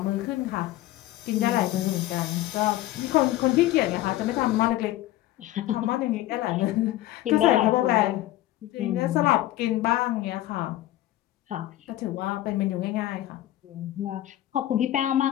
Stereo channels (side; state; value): right; quieter; 14.9 dB